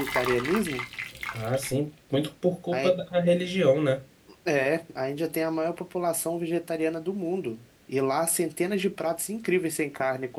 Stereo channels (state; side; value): identical; both; correlation 1.00